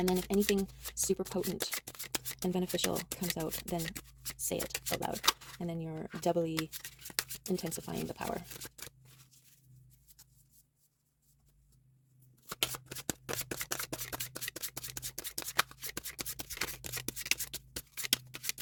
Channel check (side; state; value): both; identical; correlation 1.00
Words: then if anything super potent and beneficial comes out, then say it out loud. And then you're doubly intensifying the power.